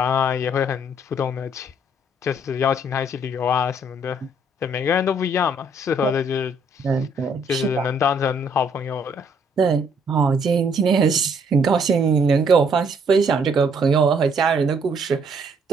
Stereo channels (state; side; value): normal; both; correlation 0.66